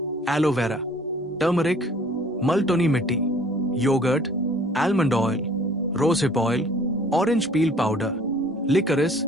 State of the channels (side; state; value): both; normal; correlation 0.54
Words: एलोवेरा, टर्मरिक, मल्टोनी मिट्टी, yogurt, almond oil, rosehip oil, orange peel powder, liquorice,